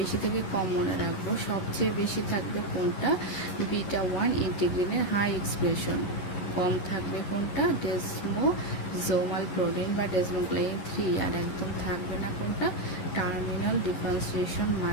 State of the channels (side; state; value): right; late; 11 ms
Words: থেকে কম মনে রাখবো। সবচেয়ে বেশি থাকবে কোনটা? β1 ইন্টিগ্রিনের হাই এক্সপ্রেশন। কম থাকবে কোনটা? ডেসমোজোমাল প্রোটিন বা ডেসমোগ্লাইন 3। আর একদম থাকবে না কোনটা? Terminal differentiation